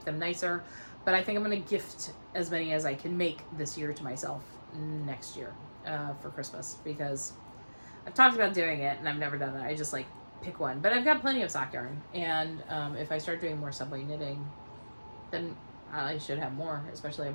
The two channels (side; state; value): both; inverted; correlation -1.00